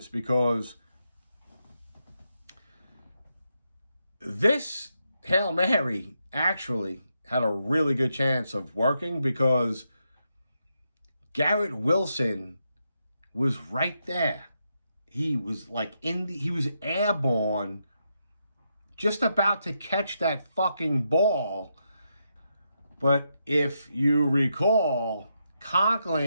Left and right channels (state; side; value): inverted; both; correlation -0.82